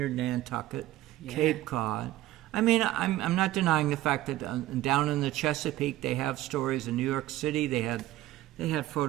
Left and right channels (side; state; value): left; quieter; 15.4 dB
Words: Nantucket, Cape Cod. I mean, I'm not denying the fact that down in the Chesapeake they have stories. In New York City they had